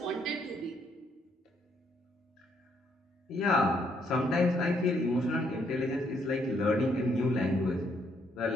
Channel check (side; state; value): both; normal; correlation 0.72